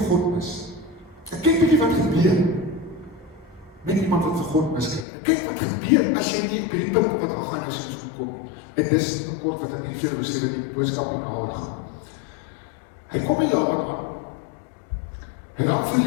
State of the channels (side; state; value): right; drops out; at 5.1 s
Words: God mis. Ek kyk bietjie wat gebeur, met iemand wat vir God miskyk. Kyk wat gebeur as jy nie op hierdie punt wat Haggai nie soms kom. En dis 'n kort wat ek nie vir julle sê dat die boodskap nie nader gaan. Hy kom by Laban aan. Hy raak